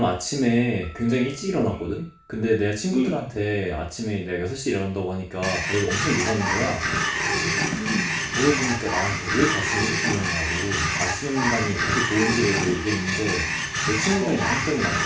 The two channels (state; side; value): identical; both; correlation 1.00